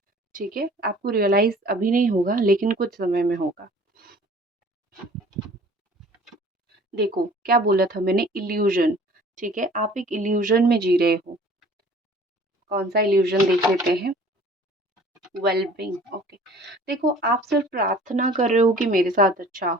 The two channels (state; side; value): normal; both; correlation 0.49